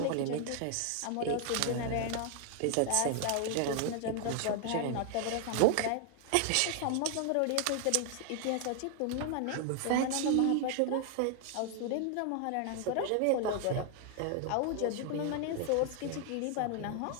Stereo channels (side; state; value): both; different; correlation 0.00